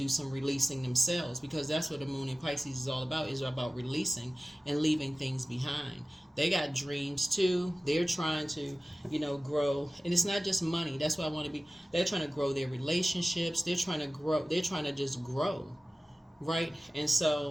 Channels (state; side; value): normal; both; correlation 0.96